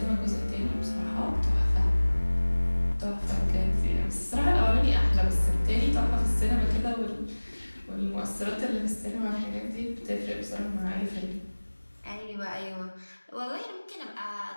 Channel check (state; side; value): inverted; both; correlation -1.00